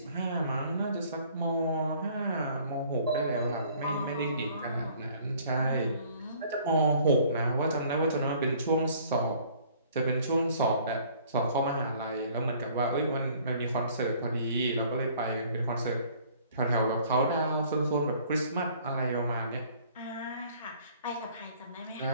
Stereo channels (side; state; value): both; inverted; correlation -0.56